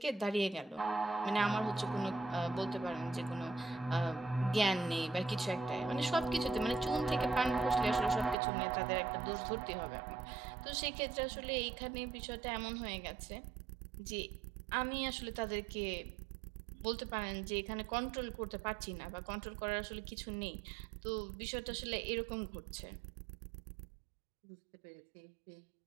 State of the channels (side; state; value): left; drops out; at 8.3 s